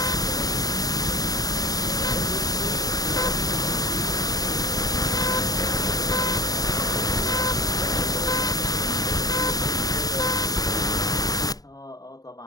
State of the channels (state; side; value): late; right; 0.18 ms